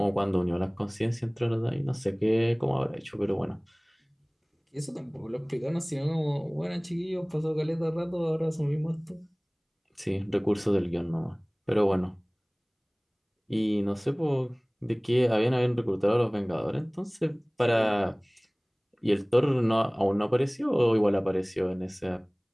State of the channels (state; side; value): identical; both; correlation 1.00